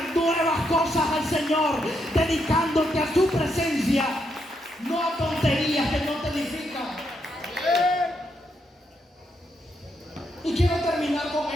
nuevas cosas al Señor, dedicándote a su presencia, no a tonterías que no te edifican. Y quiero terminar con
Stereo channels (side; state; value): both; normal; correlation 0.79